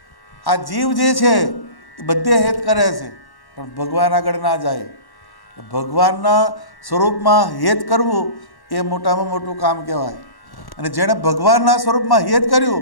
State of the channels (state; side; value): late; right; 1.1 ms